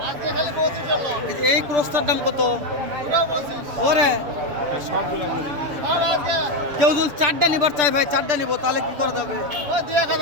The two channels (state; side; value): late; left; 6.8 ms